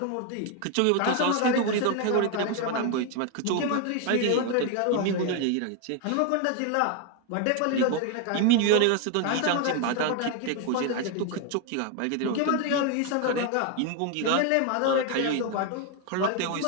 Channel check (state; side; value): different; both; correlation 0.01